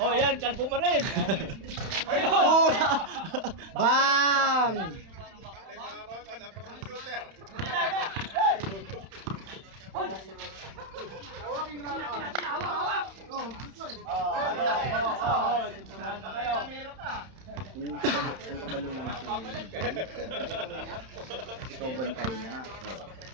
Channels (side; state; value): left; late; 31 ms